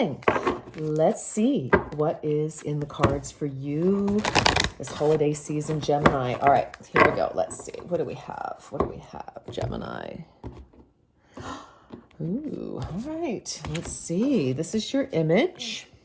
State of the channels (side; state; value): both; identical; correlation 1.00